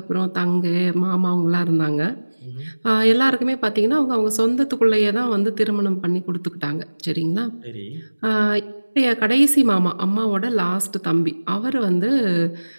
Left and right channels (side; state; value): both; inverted; correlation -1.00